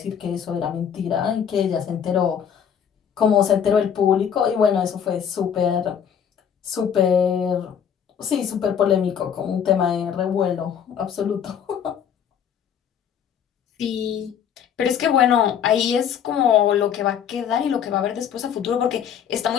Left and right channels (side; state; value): right; quieter; 8.3 dB